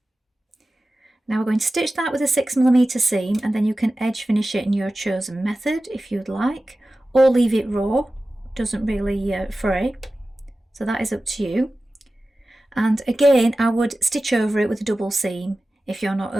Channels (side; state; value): both; normal; correlation 0.95